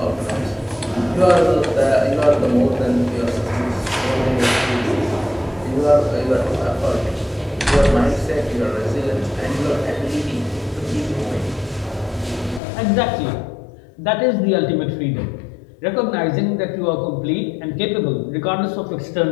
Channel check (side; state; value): right; drops out; at 12.6 s